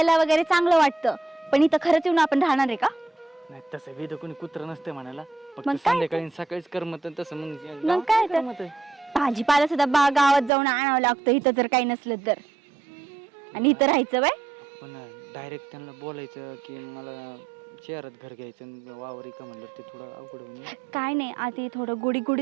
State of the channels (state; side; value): drops out; left; at 10.5 s